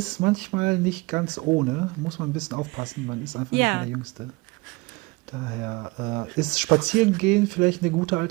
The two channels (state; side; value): quieter; left; 24.4 dB